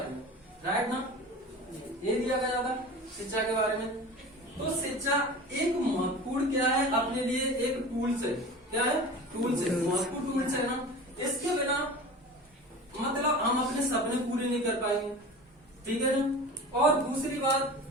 में। राइट ना? ये दिया गया था शिक्षा के बारे में। तो शिक्षा एक महत्वपूर्ण क्या है अपने लिए, एक टूल्स है। क्या है? टूल्स है, महत्वपूर्ण टूल्स है ना। इसके बिना मतलब हम अपने सपने पूरे नहीं कर पाएंगे। ठीक है ना? और दूसरी बात,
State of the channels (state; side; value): normal; both; correlation 0.36